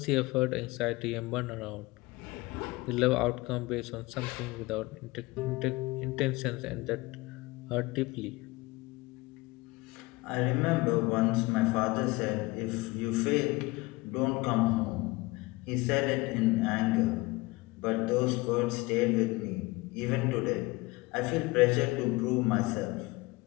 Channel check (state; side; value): quieter; right; 22.5 dB